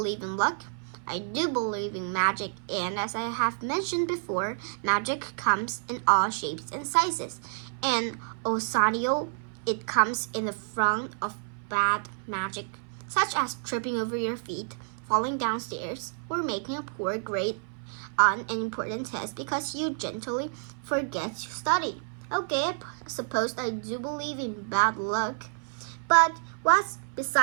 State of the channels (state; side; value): silent; left; 57 dB below the other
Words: in luck, I do believe in magic, and as I have mentioned before, magic comes in all shapes and sizes. And also, it comes in the front of bad magic, such as tripping over your feet, falling downstairs, or making a poor grade on an important test because you gently forget to study. Okay, I suppose I do believe in bad luck. But what's